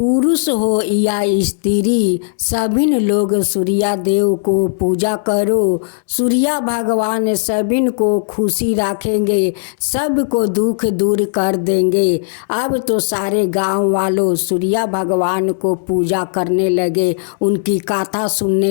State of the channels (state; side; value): silent; right; digital silence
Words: हो या स्त्री, सभी लोग सूर्य देव को पूजा करो। सूर्य भगवान सभी को खुशी रखेंगे, सबको दुख दूर कर देंगे। अब तो सारे गांव वालों सूर्य भगवान को पूजा करने लगे, उनकी कथा